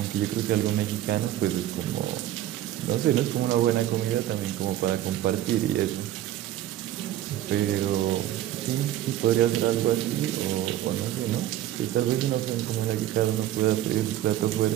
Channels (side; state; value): left; quieter; 13.0 dB